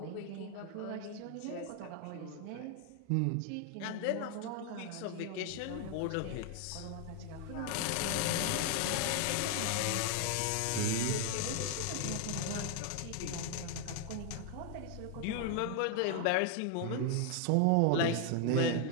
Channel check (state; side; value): different; both; correlation 0.00